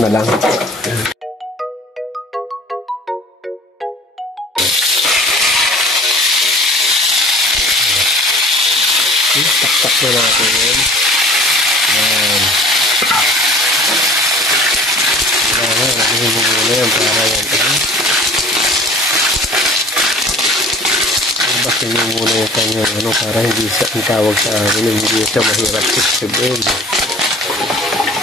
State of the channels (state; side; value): normal; both; correlation 0.47